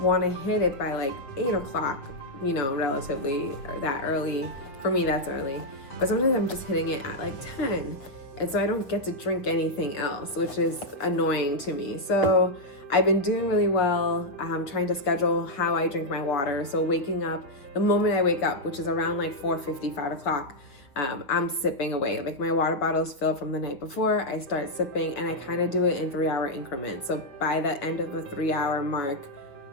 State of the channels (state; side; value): late; right; 6.8 ms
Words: to hit it by like 8 o'clock, you know, relatively that early. For me, that's early. But sometimes I'm just hitting it at like 10. And so I don't get to drink anything else, which is annoying to me. So I've been doing really well, trying to schedule how I drink my water. So waking up, the moment I wake up, which is around like 4:50, 5 o'clock, I'm sipping away. Like my water bottle's filled from the night before, I start sipping, and I kind of do it in 3-hour increments. So by the end of the 3-hour mark,